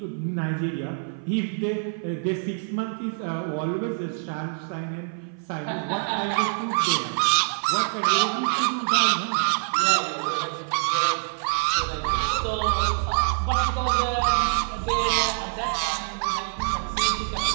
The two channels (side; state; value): left; silent; 55 dB below the other